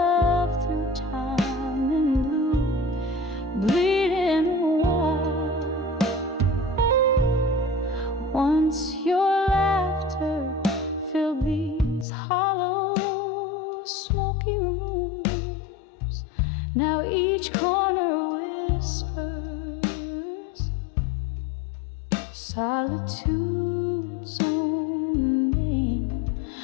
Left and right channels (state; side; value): drops out; right; at 12.1 s